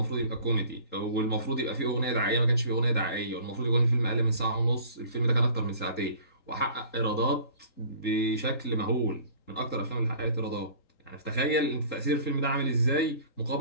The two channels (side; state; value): right; late; 3.8 ms